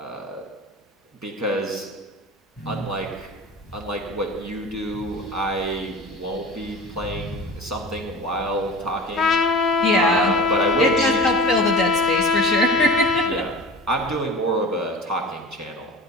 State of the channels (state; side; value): normal; both; correlation 0.36